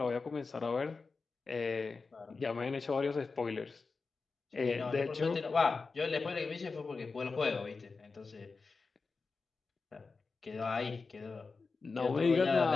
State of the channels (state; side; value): quieter; right; 4.3 dB